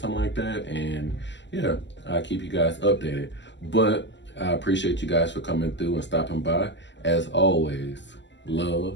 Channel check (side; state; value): right; late; 0.53 ms